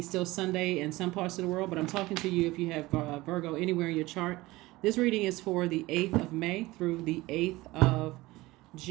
Sunday in some parts of the world, but I'm talking to you if you have Virgo anywhere in your chart. This reading is for the 8th of May through the 8th of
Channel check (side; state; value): left; quieter; 19.6 dB